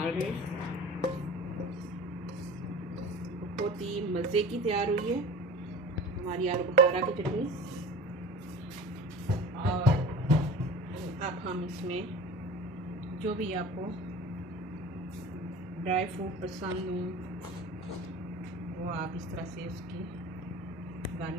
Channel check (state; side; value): normal; both; correlation 0.38